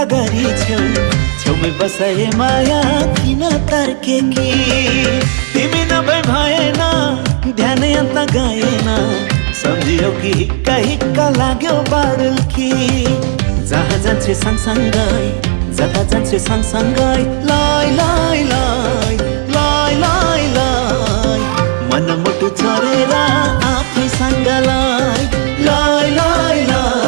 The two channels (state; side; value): silent; left; digital silence